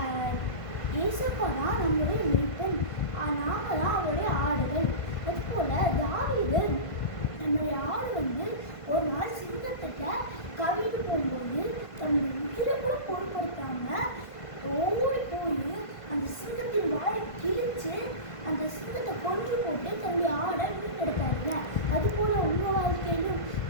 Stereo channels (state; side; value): late; right; 1.5 ms